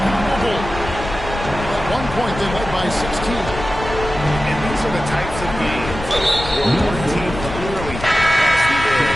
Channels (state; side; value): noise; left; rumble, 9 dB below the sound